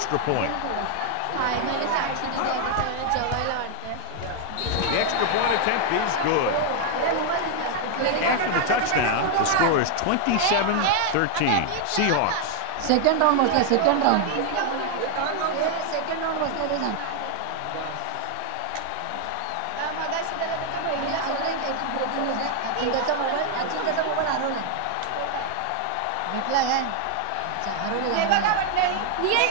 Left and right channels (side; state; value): both; different; correlation 0.00